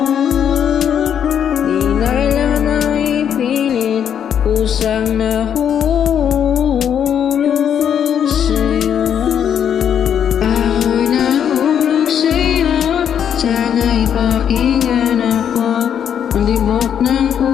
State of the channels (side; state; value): right; quieter; 8.7 dB